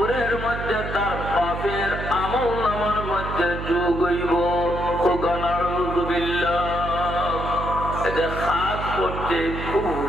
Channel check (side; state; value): right; noise; hum, 6 dB below the sound